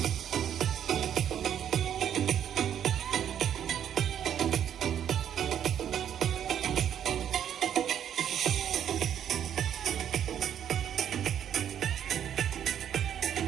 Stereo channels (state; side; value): quieter; left; 9.5 dB